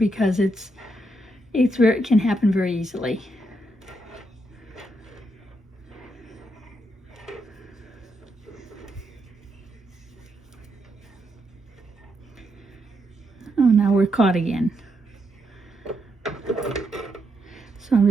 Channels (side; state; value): both; normal; correlation 0.80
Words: it can happen very easily. Oh, now we're caught again. So I'm